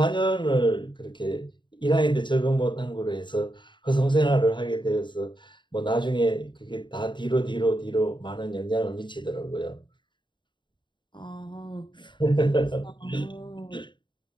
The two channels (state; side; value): late; right; 0.23 ms